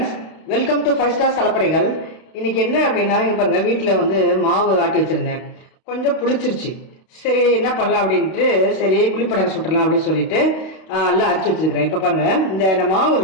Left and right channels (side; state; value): right; late; 32 ms